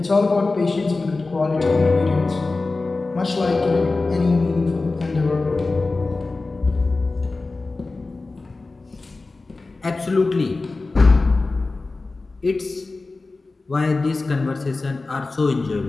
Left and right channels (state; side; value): quieter; right; 3.5 dB